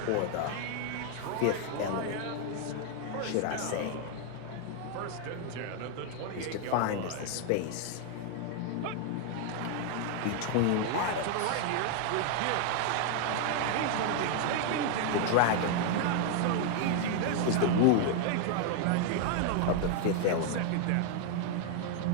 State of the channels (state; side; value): different; both; correlation 0.00